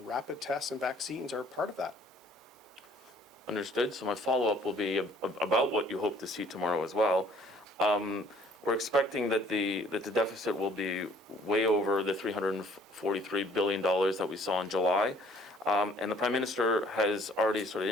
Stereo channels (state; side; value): normal; both; correlation 0.58